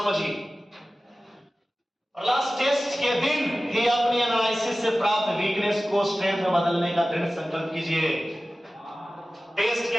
और लास्ट टेस्ट के दिन ही अपनी एनालिसिस से प्राप्त वीकनेस को स्ट्रेंथ में बदलने का दृढ़ संकल्प कीजिए। टेस्ट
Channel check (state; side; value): normal; both; correlation 0.96